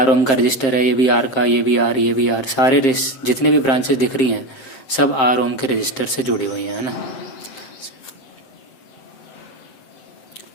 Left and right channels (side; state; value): right; late; 7.6 ms